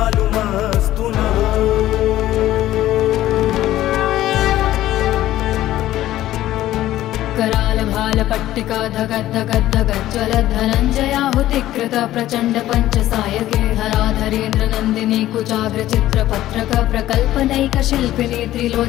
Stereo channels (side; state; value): right; quieter; 14.2 dB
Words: नः कराल भाल पट्टिका धगद्धगद्धगज्ज्वल धनञ्जयाहुतिकृत प्रचण्ड पञ्चसायके धराधरेन्द्र नन्दिनी कुचाग्र चित्रपत्रक प्रकल्पनैक शिल्पिनी